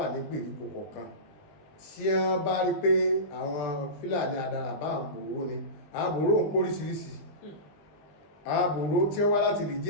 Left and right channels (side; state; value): right; late; 20 ms